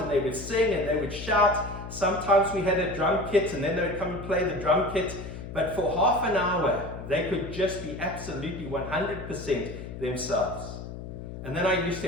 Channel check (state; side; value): noise; left; hum, 10 dB below the sound